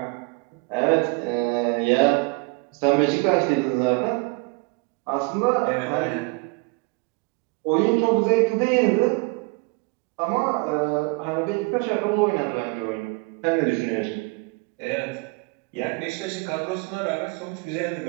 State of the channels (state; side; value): quieter; left; 29.1 dB